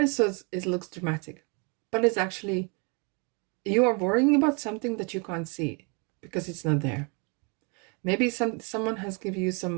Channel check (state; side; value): quieter; left; 33.8 dB